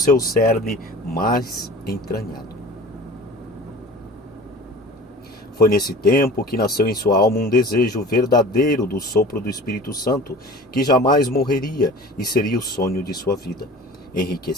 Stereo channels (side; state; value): both; normal; correlation 0.40